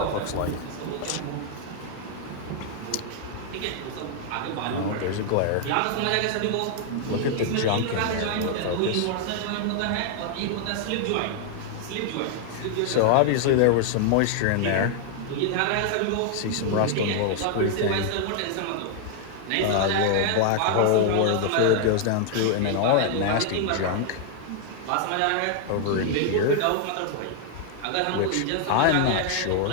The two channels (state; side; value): different; both; correlation 0.00